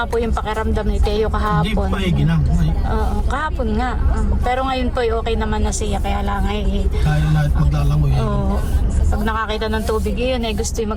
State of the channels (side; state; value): both; identical; correlation 1.00